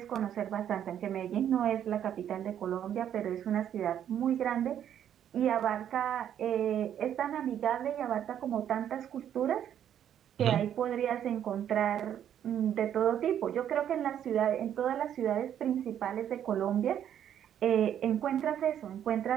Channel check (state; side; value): quieter; left; 9.9 dB